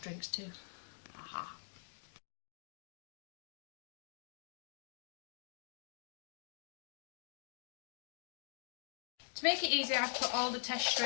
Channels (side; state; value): right; silent; digital silence